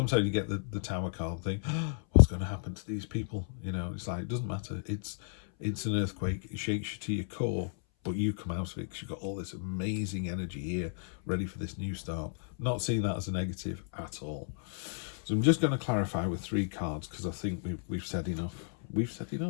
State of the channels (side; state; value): right; silent; 56 dB below the other